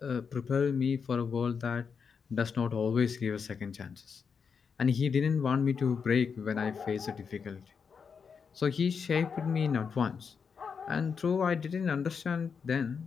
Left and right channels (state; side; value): quieter; right; 6.1 dB